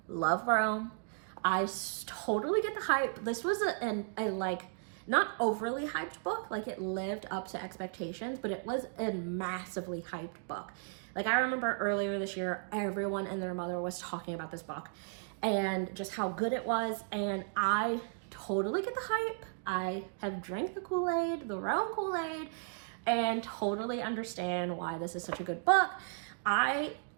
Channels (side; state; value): left; silent; digital silence